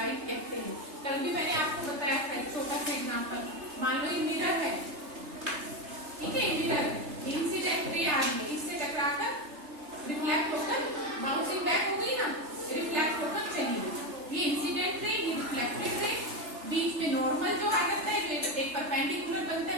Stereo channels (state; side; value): late; left; 3.3 ms